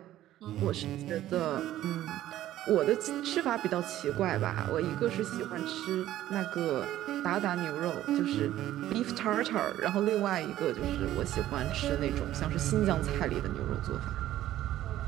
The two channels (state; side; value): quieter; left; 13.5 dB